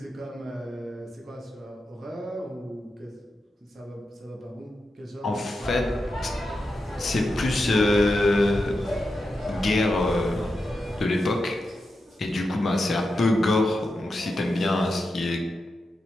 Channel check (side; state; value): both; normal; correlation 0.89